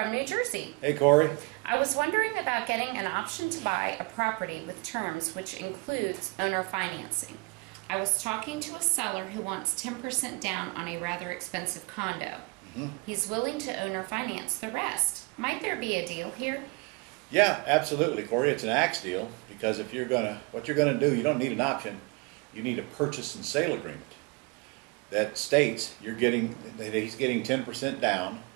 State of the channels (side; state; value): left; quieter; 29.7 dB